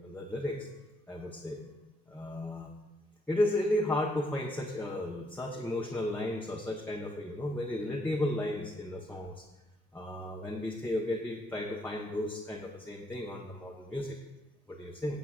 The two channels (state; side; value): normal; both; correlation 0.73